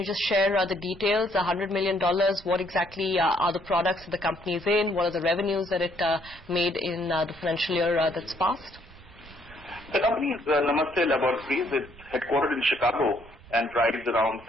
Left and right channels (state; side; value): noise; right; rumble, 21 dB below the sound